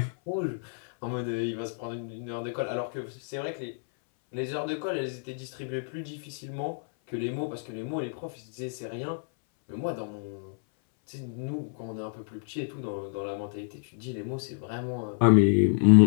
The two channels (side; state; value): right; silent; 58 dB below the other